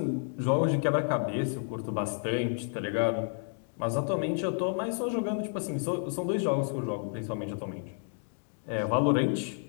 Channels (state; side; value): silent; right; 57 dB below the other